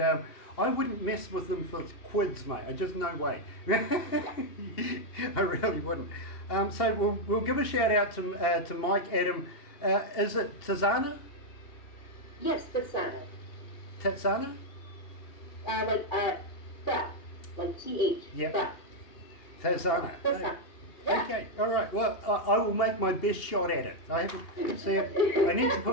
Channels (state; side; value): late; right; 2.7 ms